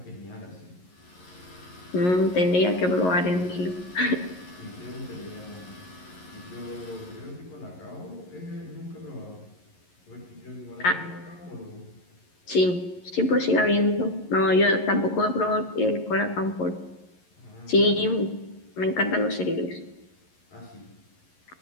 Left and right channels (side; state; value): right; late; 11 ms